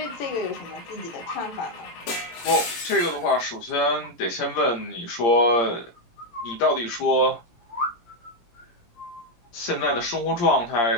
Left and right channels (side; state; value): right; late; 17 ms